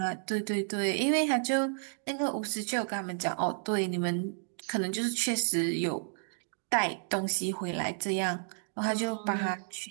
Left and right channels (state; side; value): silent; left; digital silence